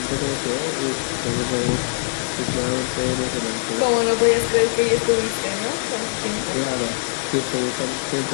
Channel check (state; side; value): silent; right; digital silence